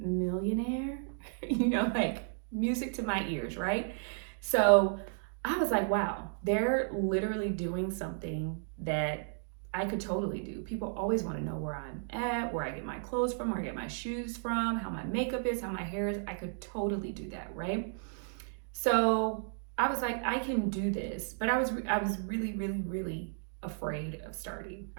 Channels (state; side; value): silent; left; digital silence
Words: Like music to my ears, right? So I was like, wow, they're literally doing something that I could totally do. People always want to know where I'm at, where I get my clothes from, where I get my shoes from, how my makeup is, how my hair is. I could totally do that, right? So I was like, I can do this, but I was really, really, really afraid of starting.